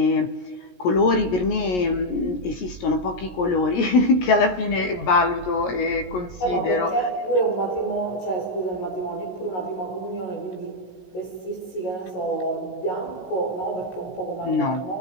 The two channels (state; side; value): late; right; 17 ms